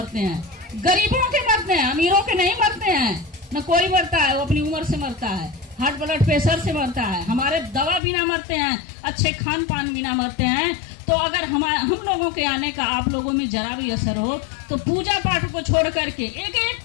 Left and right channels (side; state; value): right; drops out; at 8.0 s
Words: हैं, गरीबों के मरते हैं, अमीरों के नहीं मरते हैं। न कोई मरता है, वो अपनी उम्र से मरता है, हार्ट ब्लड प्रेशर से मरता है, हमारे दवा बिना मरते हैं, अच्छे खान पान बिना मरते हैं। तो अगर हम लोगों के आने का आप लोगों में जरा भी असर हो तो पूजा पाठ को छोड़ करके एक एक